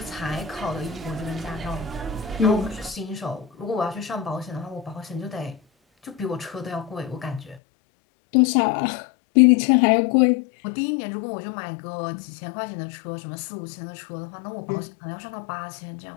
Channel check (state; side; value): drops out; right; at 7.6 s